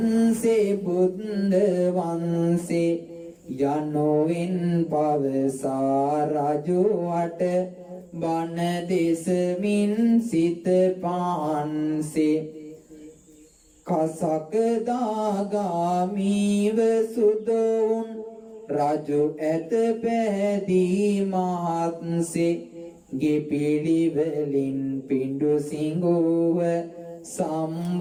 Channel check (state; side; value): identical; both; correlation 1.00